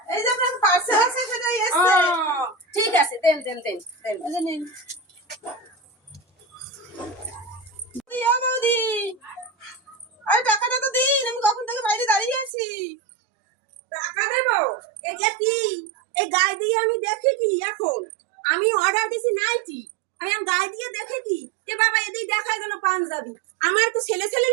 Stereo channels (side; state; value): left; drops out; at 12.5 s